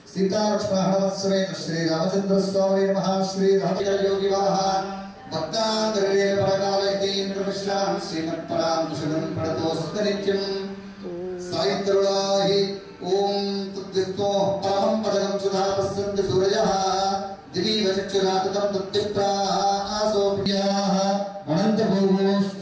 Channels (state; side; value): identical; both; correlation 1.00